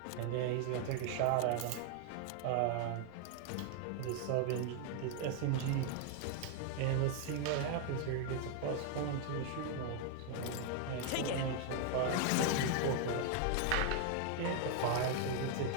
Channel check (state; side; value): different; both; correlation 0.00